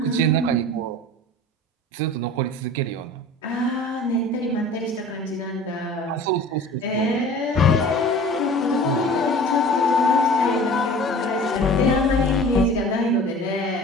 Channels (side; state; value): both; normal; correlation 0.43